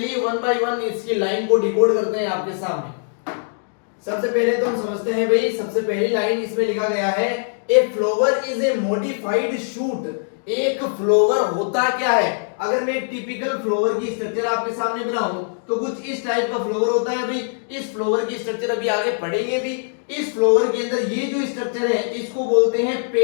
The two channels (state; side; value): silent; right; digital silence